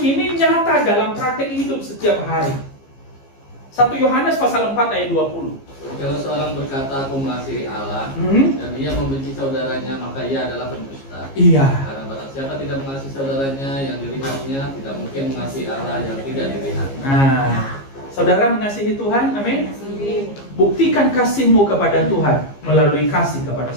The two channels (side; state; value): right; late; 15 ms